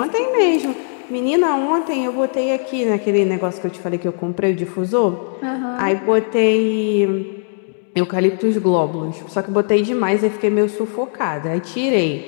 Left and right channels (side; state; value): right; silent; 67 dB below the other